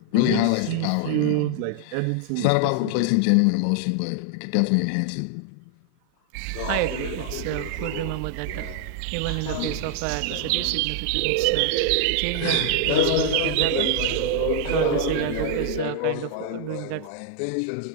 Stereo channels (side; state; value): both; different; correlation 0.00